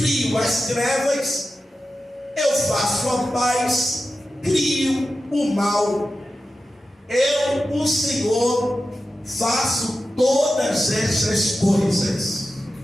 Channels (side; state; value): both; normal; correlation 0.92